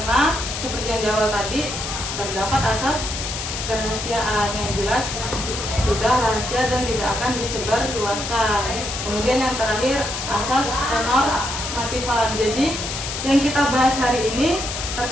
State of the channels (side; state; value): left; noise; hiss, 5 dB below the sound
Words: seperti yang di awal tadi terdapat asas kerahasiaan yang jelas sudah rahasia dan tidak akan disebarluaskan. Kemudian yang terakhir asas penormatifan. Jadi yang kita bahas hari ini